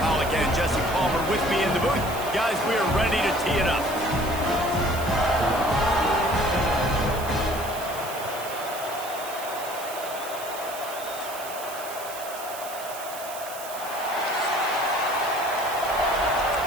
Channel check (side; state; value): right; noise; hiss, 12 dB below the sound